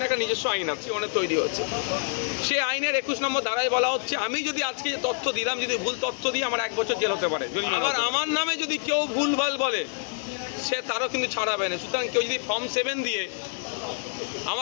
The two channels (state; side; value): silent; right; 60 dB below the other